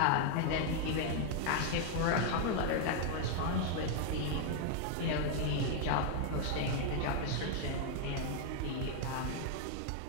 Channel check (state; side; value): different; both; correlation 0.00